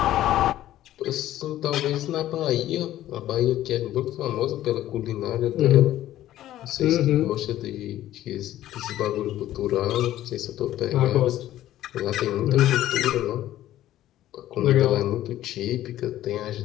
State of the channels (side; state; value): right; quieter; 13.6 dB